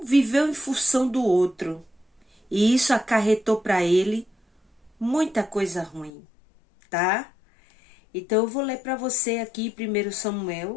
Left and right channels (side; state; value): right; drops out; at 6.1 s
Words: viveu em função do outro. E isso acarretou para ele muita coisa ruim, tá? Então eu vou ler para você aqui 1